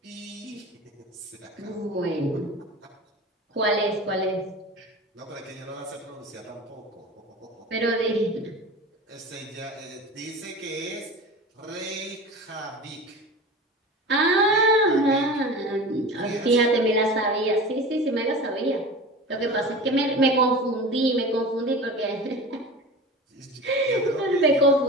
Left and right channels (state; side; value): normal; both; correlation 0.34